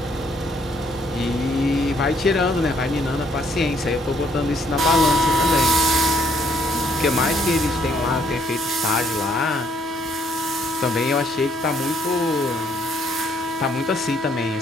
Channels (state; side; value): normal; both; correlation 0.68